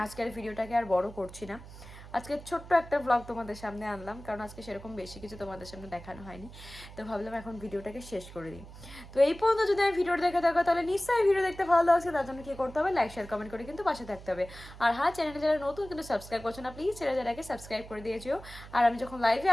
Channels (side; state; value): right; noise; hum, 16 dB below the sound